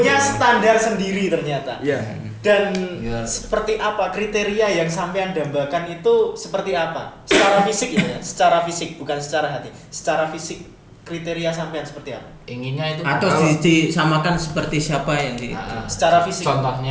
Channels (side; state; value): both; identical; correlation 1.00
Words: standar sendiri ternyata. Iya. Dan Iya. seperti apa kriteria yang sampean dambakan itu seperti apa? Secara fisik ya, secara fisik bukan secara hati. Secara fisik kriteria sampean seperti apa? Inginnya itu Atau disamakan seperti siapa yang di Ah, secara fisik.